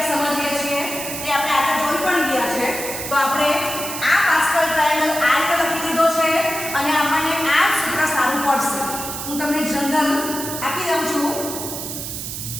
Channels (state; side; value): noise; right; hiss, 6 dB below the sound